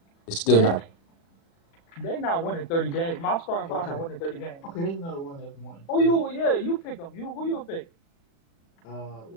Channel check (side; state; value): right; late; 36 ms